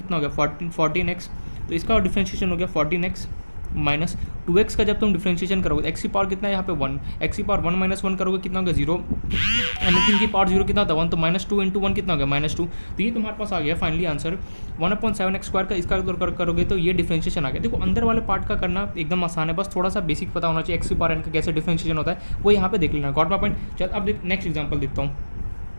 हो गया 14x, तो इसका डिफरेंशिएशन हो गया 14x - 2x का जब तुम डिफरेंशिएशन करोगे x की पावर कितना है यहाँ पे 1, x की पावर 1 - 1 करोगे कितना हो गया 0, एनीथिंग की पावर 0 कितना होता है 1, तो -2 × 1 कितना हो गया -2। तो ये तुम्हारे पास आ गया फाइनली आंसर 1/7x² का। इसका करोगे तो ये डिफरेंशिएशन आ गया। देखो अंदर वाले पार्ट का करना एकदम आसान है, बस थोड़ा सा बेसिक पता होना चाहिए, x की पावर n का कैसे डिफरेंशिएशन होता है वो यहाँ पे देख लेना। Got my point. चल अब नेक्स्ट एग्जाम्पल देखता हूँ।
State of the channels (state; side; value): inverted; both; correlation -1.00